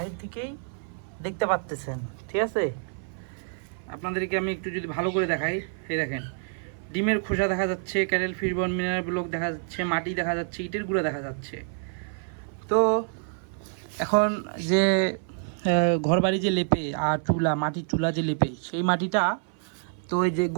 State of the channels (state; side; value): silent; left; 57 dB below the other